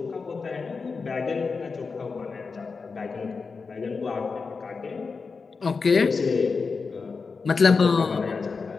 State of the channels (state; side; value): quieter; right; 4.7 dB